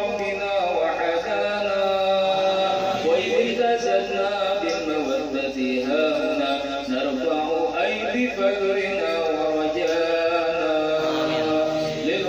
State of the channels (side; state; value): both; identical; correlation 1.00